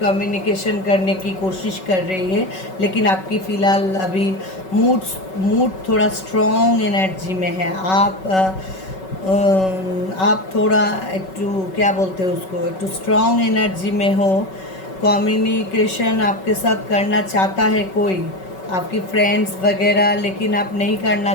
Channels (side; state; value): right; late; 5.3 ms